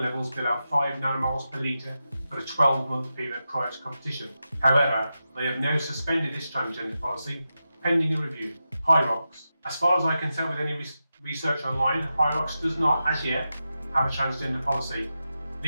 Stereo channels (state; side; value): inverted; both; correlation -0.90